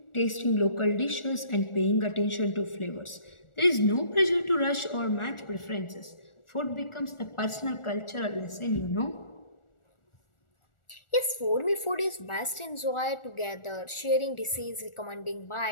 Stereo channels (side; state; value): right; late; 1.4 ms